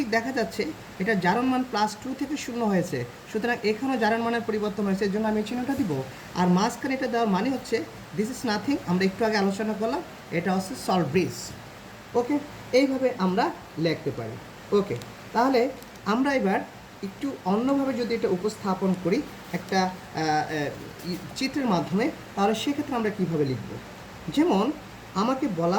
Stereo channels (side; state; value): both; identical; correlation 1.00